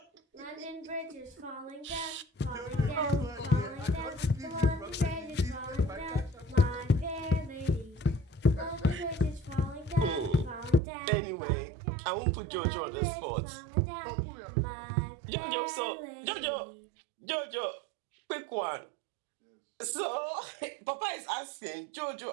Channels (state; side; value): drops out; left; at 10.8 s